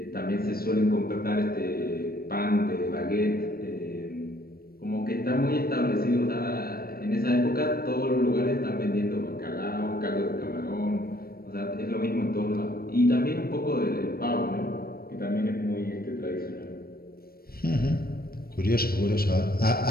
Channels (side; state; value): right; late; 0.44 ms